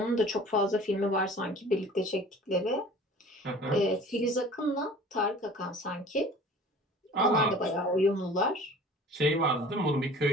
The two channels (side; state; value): both; normal; correlation 0.46